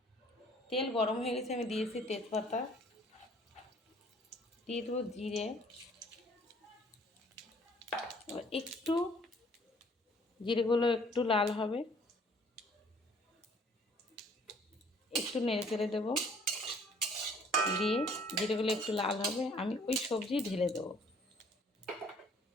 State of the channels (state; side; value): normal; both; correlation 0.58